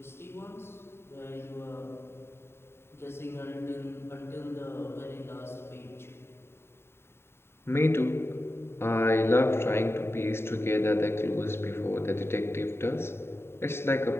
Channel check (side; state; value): right; late; 0.12 ms